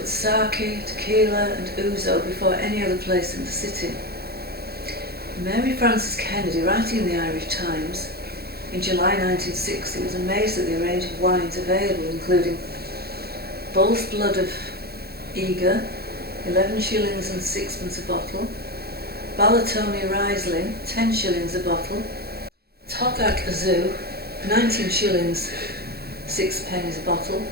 sake, tequila and ouzo before any other place in the city. Mary Frances Kennedy, writing in the Irish Times in July 1960, was amazed at the range of wines available, including Bull's Blood of Eger, 11 shillings and sixpence a bottle, Balatoni Riesling, 10 shillings a bottle, Tokak Azu, 19 shillings 6 pennies a bottle,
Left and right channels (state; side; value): late; left; 0.46 ms